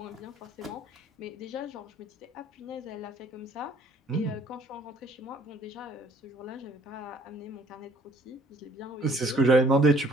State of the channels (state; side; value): normal; both; correlation 0.59